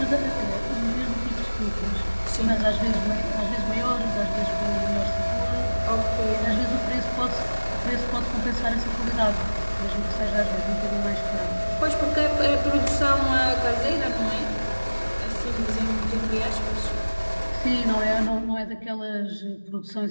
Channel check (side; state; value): both; inverted; correlation -1.00